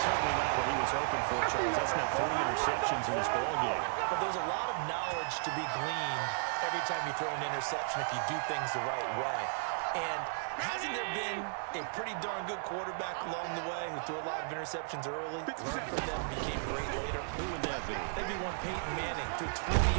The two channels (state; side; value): silent; left; 55 dB below the other